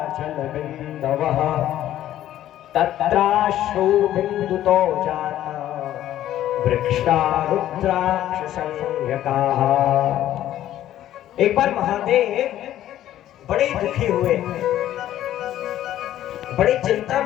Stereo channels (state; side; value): quieter; right; 12.6 dB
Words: जलबिंदवः तत्राश्रु बिंदुतो जाता वृक्षा रुद्राक्ष संज्ञकाः। एक बार महादेव बड़े दुखी हुए, बड़ी चिंता